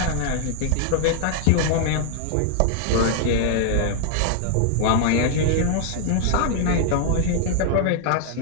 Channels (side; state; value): both; different; correlation 0.00